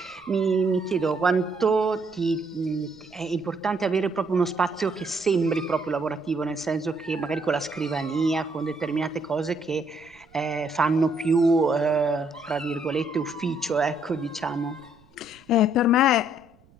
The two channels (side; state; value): right; noise; rumble, 30 dB below the sound